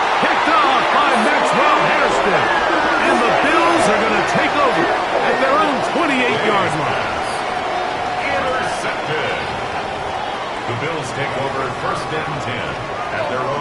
Picked off by Maxwell Hairston. And the Bills are going to take over at their own 28-yard line. Intercepted. The Bills take over first and 10 at their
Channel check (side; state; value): both; identical; correlation 1.00